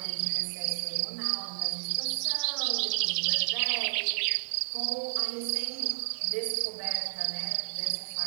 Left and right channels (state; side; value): silent; left; 57 dB below the other